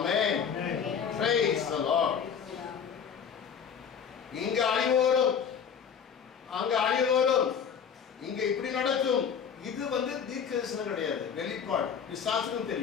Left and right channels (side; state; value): right; quieter; 7.2 dB